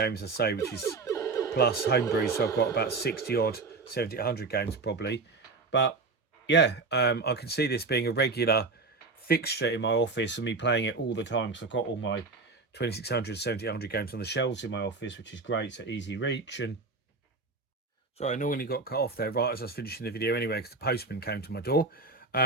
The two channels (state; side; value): quieter; left; 3.9 dB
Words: I say, which is plus Homebrew, so I've got about 60 odd 7800 games probably. But yeah, I can see this being a regular fixture in my office and me playing it all the time, because I've got all my 2600 7800 games on the shelves in my office, which is great. So easy reach. And so I normally got cut off there right as I was finishing the video anyway, because the postman came to my door.